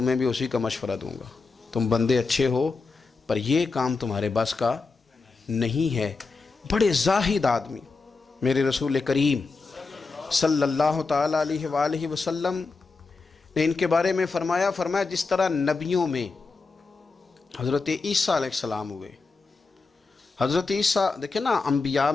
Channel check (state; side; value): quieter; right; 4.1 dB